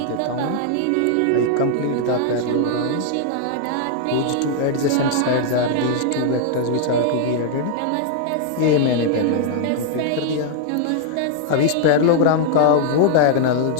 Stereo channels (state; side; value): different; both; correlation 0.00